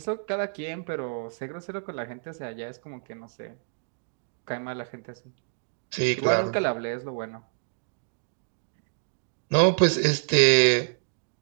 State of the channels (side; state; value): left; silent; digital silence